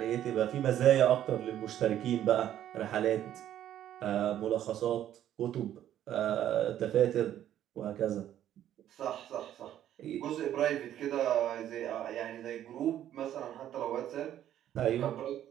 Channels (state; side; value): quieter; left; 11.5 dB